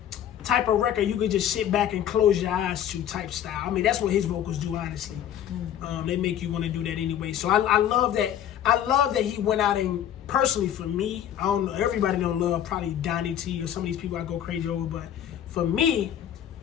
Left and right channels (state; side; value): quieter; right; 10.3 dB